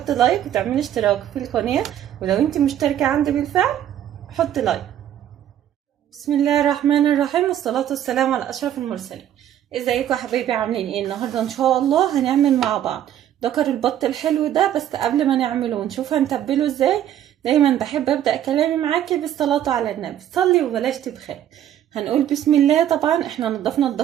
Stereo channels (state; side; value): quieter; left; 11.0 dB